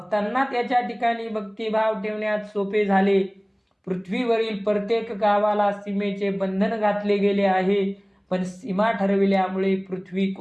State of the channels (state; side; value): identical; both; correlation 1.00